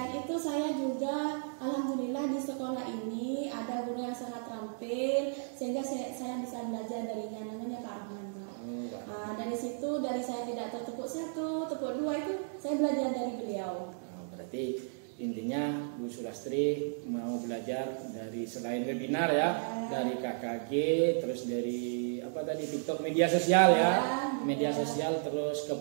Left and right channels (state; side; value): silent; left; digital silence